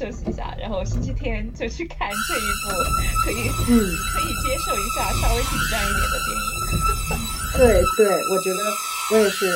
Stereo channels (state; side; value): identical; both; correlation 1.00